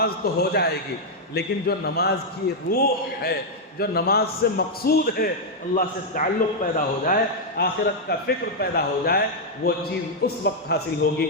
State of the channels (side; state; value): both; normal; correlation -0.03